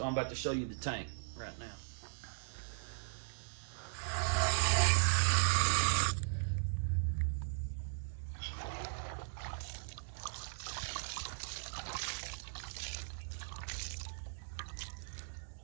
I'm about to show you the tank right now.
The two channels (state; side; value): silent; left; digital silence